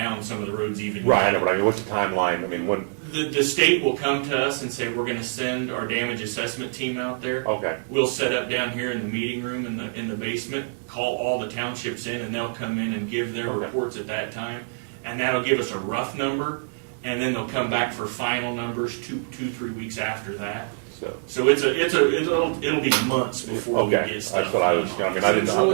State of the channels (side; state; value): left; silent; digital silence